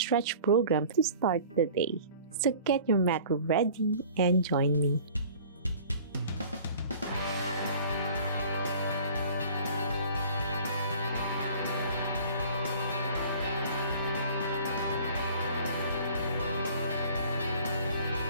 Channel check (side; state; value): both; inverted; correlation -0.47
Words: program to start the day. So get your mat ready and join me.